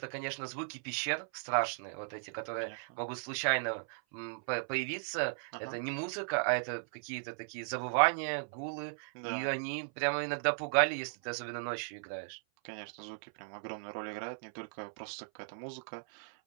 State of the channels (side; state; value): left; silent; 53 dB below the other